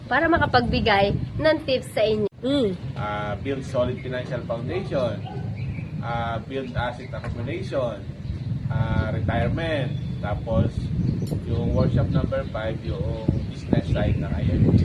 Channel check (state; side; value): identical; both; correlation 1.00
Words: para makapagbigay ng tips sa inyo. Build solid financial foundation, build asset accumulation, retirement, tapos yung workshop number 5, yung business side ng IMG.